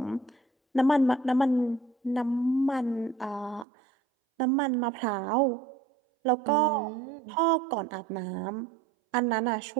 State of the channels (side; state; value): left; drops out; at 3.7 s